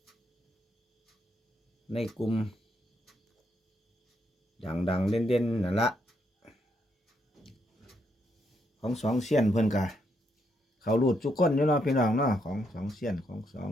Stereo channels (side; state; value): both; normal; correlation 0.77